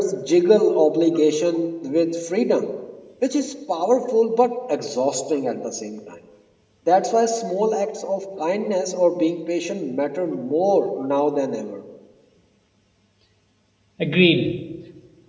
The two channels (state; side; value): identical; both; correlation 1.00